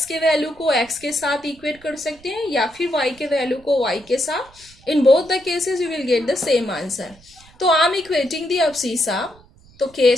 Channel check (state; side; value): noise; right; rumble, 26 dB below the sound